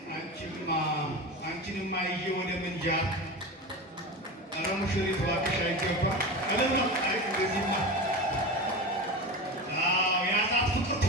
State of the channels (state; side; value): normal; both; correlation 0.26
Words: አንቺንማ ይዤ ወደ ምንጃር ኧረ ሙሽሪት እባክሽ አይገባ እልም ነው። አይ እንደዚህማ ያላት ፍቅር